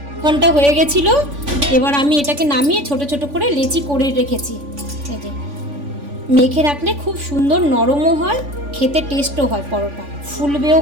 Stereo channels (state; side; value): late; left; 3.5 ms